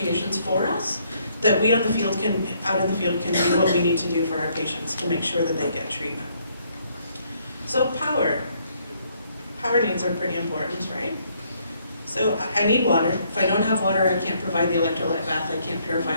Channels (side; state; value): both; inverted; correlation -0.68